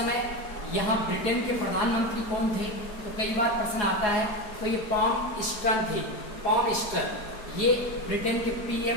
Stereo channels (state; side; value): late; right; 4.8 ms